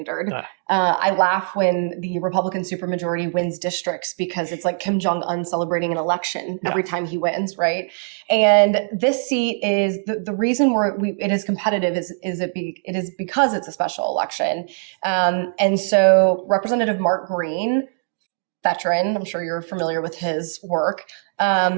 I laugh when the Republican supermajority wins districts because it's like Kim Jong-un celebrating an election every time he wins, right? And this seat is the reason it is competitive it is because it's a special election. And so Representative Mark Green, veteran, I'm sure you're familiar with his work,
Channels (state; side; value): silent; left; digital silence